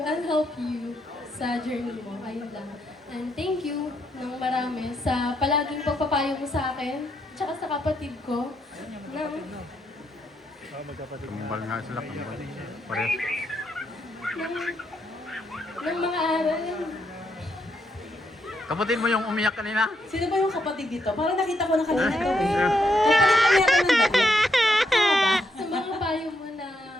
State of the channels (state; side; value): normal; both; correlation 0.78